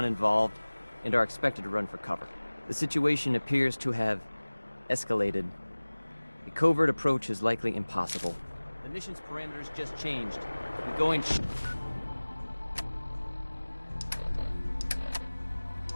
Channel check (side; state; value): both; inverted; correlation -1.00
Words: and are expected to run for cover. The situation appears to have escalated. A covert approach is likely impossible. The mission's parameters just changed. We're going...